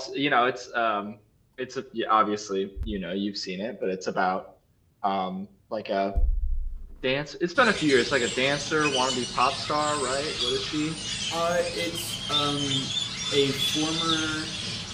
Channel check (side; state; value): both; identical; correlation 1.00